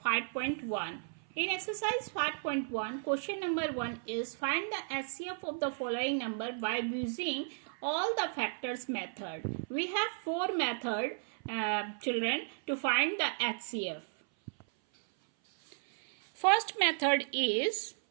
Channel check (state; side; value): silent; left; 55 dB below the other